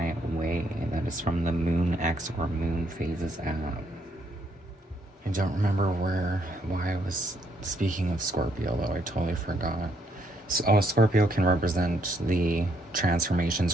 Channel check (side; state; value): both; normal; correlation 0.72